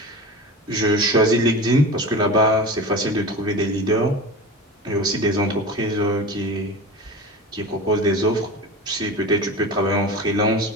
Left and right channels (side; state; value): both; normal; correlation 0.31